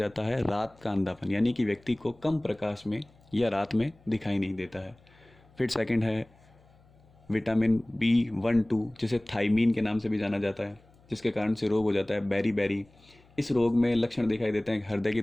है रात का अंधापन, यानी कि व्यक्ति को कम प्रकाश में या रात में दिखाई नहीं देता है। फिर सेकंड है विटामिन B12, जिसे थाइमीन के नाम से भी जाना जाता है, जिसके कारण से रोग हो जाता है बेरी। इस रोग में लक्षण दिखाई देते हैं: हृदय की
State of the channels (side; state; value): left; noise; hum, 29 dB below the sound